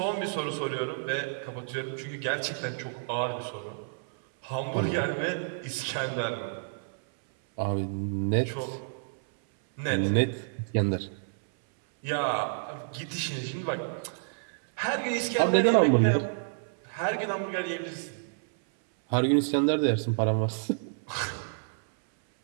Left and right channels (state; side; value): silent; left; 58 dB below the other